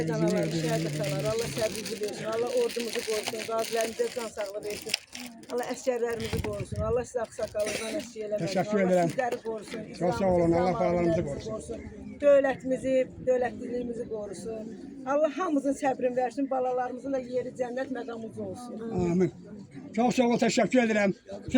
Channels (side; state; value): both; identical; correlation 1.00